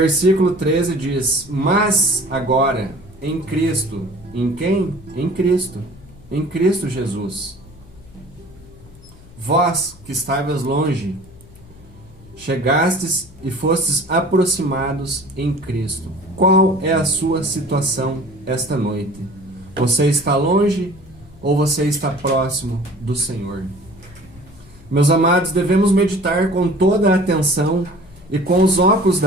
13 diz: Mas agora, em Cristo. Em quem? Em Cristo. Em Cristo Jesus. Vós, que estavas longe, chegastes e fostes aproximados em Cristo. Qual é a sua situação esta noite? Você está longe ou você está próximo do Senhor? Meus amados, devemos meditar com toda a atenção e com os óculos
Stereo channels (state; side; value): noise; left; hum, 24 dB below the sound